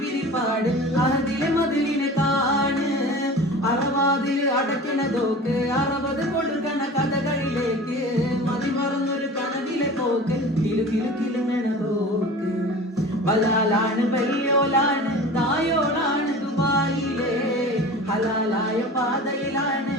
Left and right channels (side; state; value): both; normal; correlation 0.37